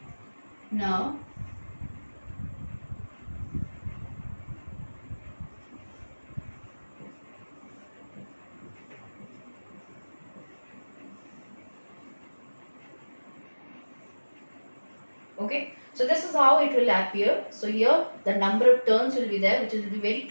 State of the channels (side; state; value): both; inverted; correlation -1.00